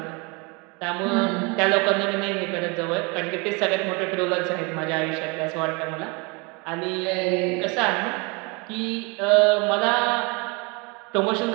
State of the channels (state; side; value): quieter; left; 29.5 dB